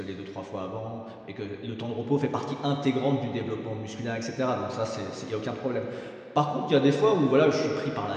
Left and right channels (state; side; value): identical; both; correlation 1.00